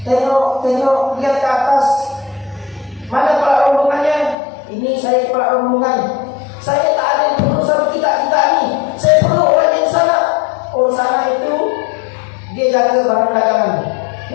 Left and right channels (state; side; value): drops out; right; at 4.4 s